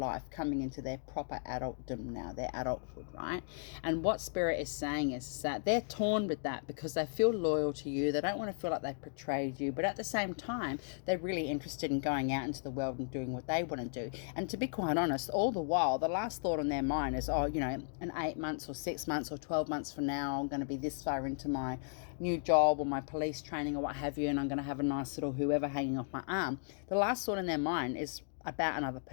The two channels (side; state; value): right; silent; digital silence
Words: coming into their proper adultdom now, their adulthood, right? And what Spirit is saying is that they're torn with that because they feel loyal to you. They don't want to feel like they've betrayed you, but at the same time, they're really interested in going out into the world and doing what they want to do. And to be quite honest, all the while, the last thought on their mind is, oh, you know, in 8 months or 6 months or 12 months from now, I'm going to be this far into my new job or my police training or what have you, and I'm going to have a nice little whoever hanging off my arm. The last thought in their mind is about another